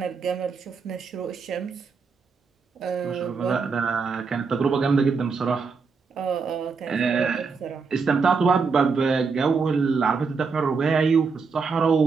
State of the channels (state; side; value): quieter; left; 5.0 dB